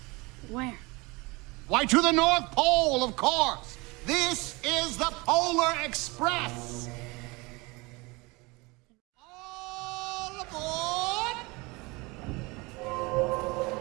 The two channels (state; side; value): quieter; left; 25.1 dB